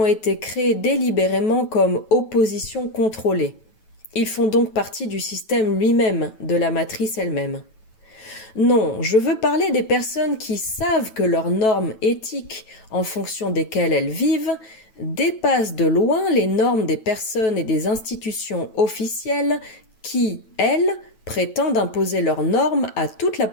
été créés délibérément comme opposition contrôlée. Ils font donc partie du système lui-même, de la matrice elle-même. Non, je veux parler des personnes qui savent que leurs normes éthiques, en fonction desquelles elles vivent, dépassent de loin les normes des personnes et des institutions officielles qui, elles, prétendent imposer leurs normes à toute la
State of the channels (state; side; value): late; right; 9.2 ms